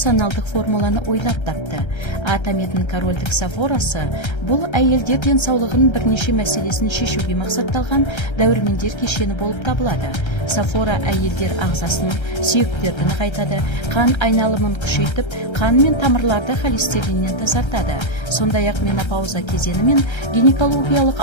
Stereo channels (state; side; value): late; right; 1.3 ms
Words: формуланы ойлап тапты. Атометтің корольдік сафорасы бұл әйелдер денсаулығының бірнеше мәселесін шешуге мақсатталған дәрумендер кешені болып табылады. Сафора әйелдер ағзасын, сүйектерді нығайтады, қан айналымын күшейтіп, қан мен тамырларды холестериннен тазартады. Сондай-ақ менопауза кезеңі мен гинекологиялық